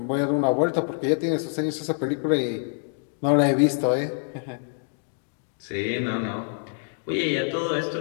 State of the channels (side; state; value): right; silent; digital silence